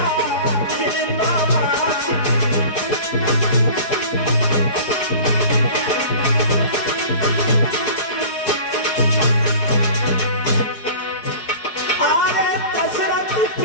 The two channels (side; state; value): right; late; 4.8 ms